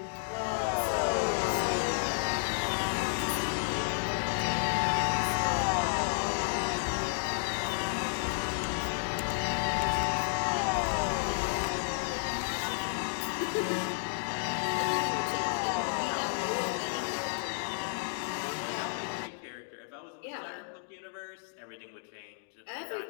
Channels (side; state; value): right; silent; digital silence